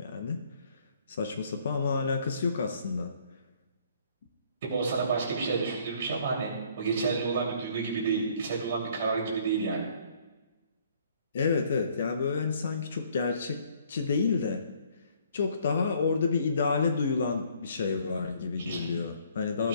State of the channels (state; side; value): inverted; both; correlation -0.61